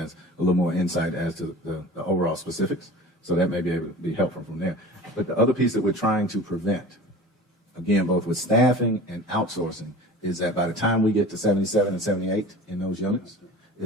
a little more insight as to the overall specifics, so that may be able to be helpful from there. But the other piece that we're trying to prevent, again, both with staffing and outsourcing, is that by the time we get to 77 and 78 in those units,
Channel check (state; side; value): normal; both; correlation 0.39